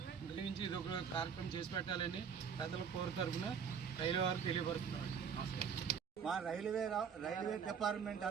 దయించి ఇది ఒక కార్యక్రమం చేసి పెట్టాలని ప్రజల కోరు తరఫున రైల్వే వారు తెలియపరుస్తున్నారు. నమస్కారం. మా రైల్వే డిపార్ట్మెంట్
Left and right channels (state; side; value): quieter; left; 7.0 dB